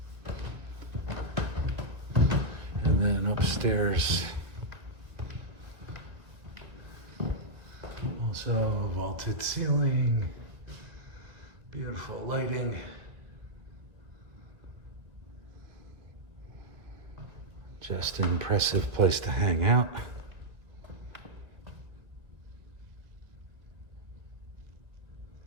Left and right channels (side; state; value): left; late; 1.7 ms